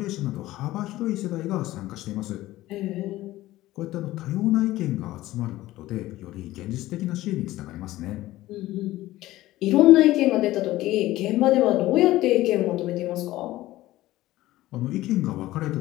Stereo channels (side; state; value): right; quieter; 16.4 dB